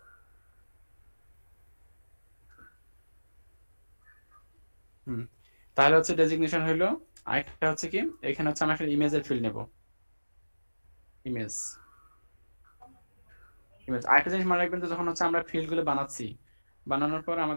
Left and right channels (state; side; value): inverted; both; correlation -1.00